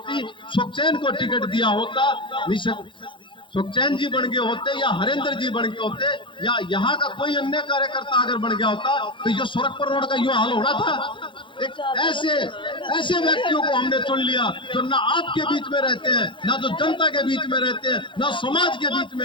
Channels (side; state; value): right; late; 0.24 ms